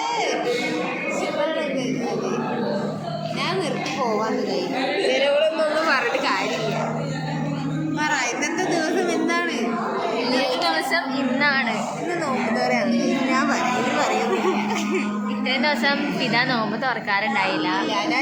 ഞാൻ നിർത്തി പോവാന്ന് കഴിയും. ചിലവളൊന്നും പറഞ്ഞിട്ട് കാര്യമില്ല. പറ ഇന്നത്തെ ദിവസം എന്താണ്? ഇന്നത്തെ ദിവസം ഇന്നാണ്. ഇന്ന് നോമ്പുതോറാണ്. ഞാൻ പറയുന്നില്ല. ഇത്രയും ദിവസം പിതാ നോമ്പ് തുറക്കാറുണ്ടായില്ല.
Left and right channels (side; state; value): both; identical; correlation 1.00